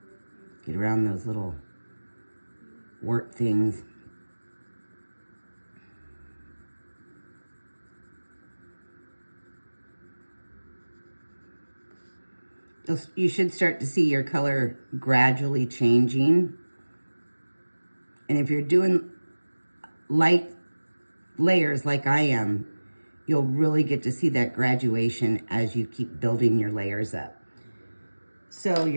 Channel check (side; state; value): both; inverted; correlation -1.00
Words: Get around those little wart things. You should start to see your color gradually changing. And if you're doing light layers like I am, you'll really get to see that graduation as you keep building your layers up. So